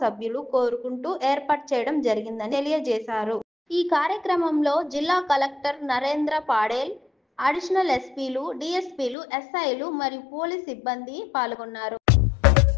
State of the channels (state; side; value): drops out; right; at 9.2 s